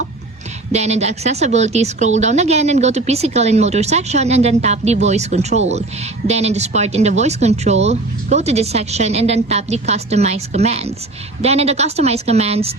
Then in the accessibility, scroll down again and go to physical and motor section and then tap the voice control. Then in this part in the voice control, go to this section and then tap the customize commands. Then in the customize commands,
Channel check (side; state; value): left; quieter; 3.0 dB